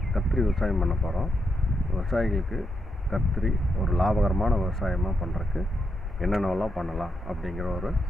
கத்திரி விவசாயம் பண்ண போகிறோம். விவசாயிகளுக்கு கத்திரி ஒரு லாபகரமான விவசாயமாக பண்ணுறதுக்கு என்னென்னலாம் பண்ணலாம் அப்படிங்கிற ஒரு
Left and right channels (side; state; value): both; normal; correlation 0.83